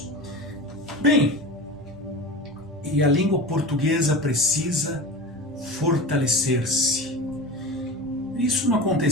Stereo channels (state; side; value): normal; both; correlation 0.31